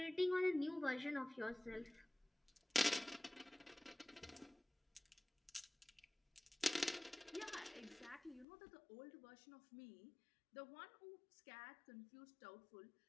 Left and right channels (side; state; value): right; drops out; at 8.5 s